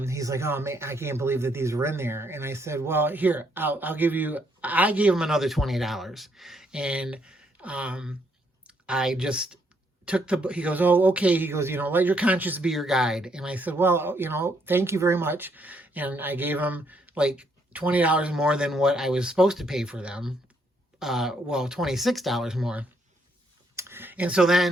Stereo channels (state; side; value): normal; both; correlation 0.72